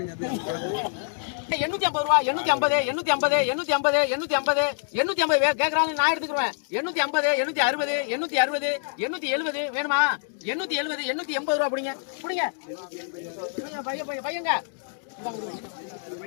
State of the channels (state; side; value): silent; right; digital silence